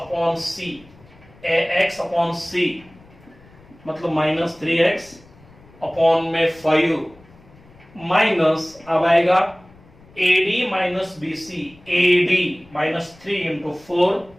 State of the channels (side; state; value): left; noise; rumble, 25 dB below the sound